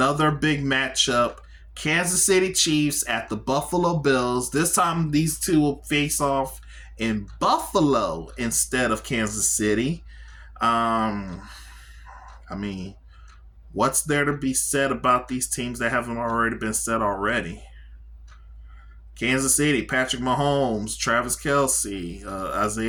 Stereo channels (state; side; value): identical; both; correlation 1.00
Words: big matchup. Kansas City Chiefs at the Buffalo Bills. This time these two will face off in Buffalo instead of Kansas City. I mean, what's there to be said about these teams that haven't already been said already? Kansas City, Patrick Mahomes, Travis Kelce,